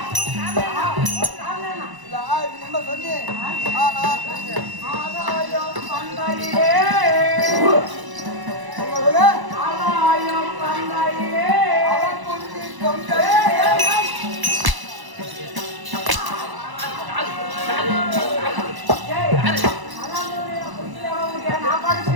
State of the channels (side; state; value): left; late; 1.0 ms